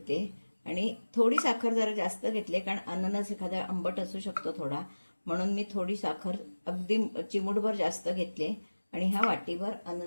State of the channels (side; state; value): both; inverted; correlation -1.00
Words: आणि थोडी साखर जरा जास्त घेतली कारण अननस एखादा आंबट असू शकतो थोडा, म्हणून मी थोडी साखर अगदी चिमूटभर जास्त घेतली आणि हा वाटीभर